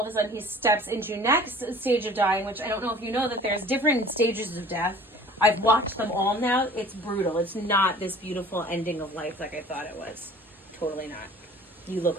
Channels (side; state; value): both; normal; correlation 0.47